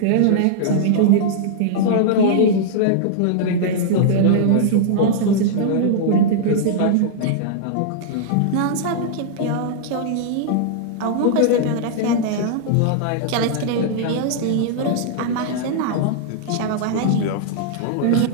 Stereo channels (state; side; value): different; both; correlation -0.01